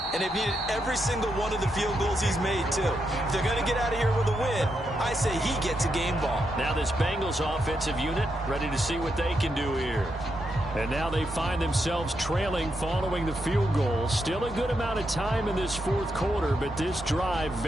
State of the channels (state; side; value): normal; both; correlation 0.82